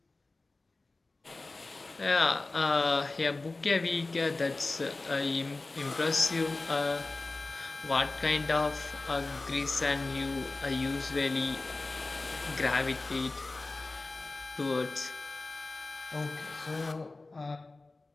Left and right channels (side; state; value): right; quieter; 3.3 dB